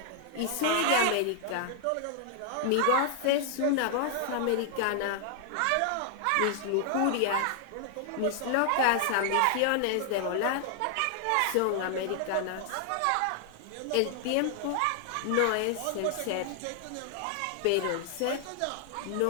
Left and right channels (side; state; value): both; different; correlation 0.00